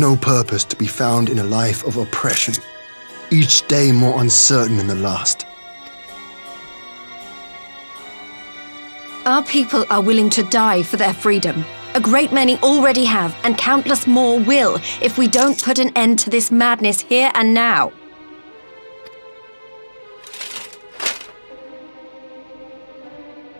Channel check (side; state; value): both; inverted; correlation -1.00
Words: purpose to be found in a life of oppression, each day more uncertain than the last. Our people are willing to die for their freedom. A great many already have, and countless more will, if we don't put an end to this madness here and now.